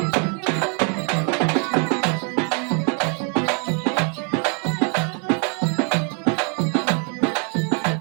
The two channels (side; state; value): left; quieter; 40.0 dB